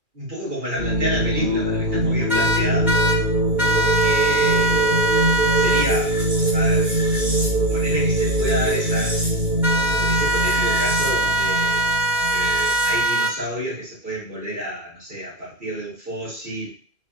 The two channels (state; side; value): late; left; 2.4 ms